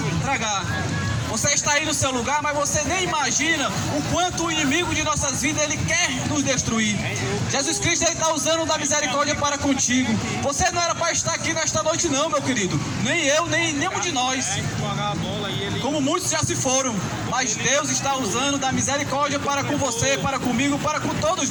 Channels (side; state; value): both; identical; correlation 1.00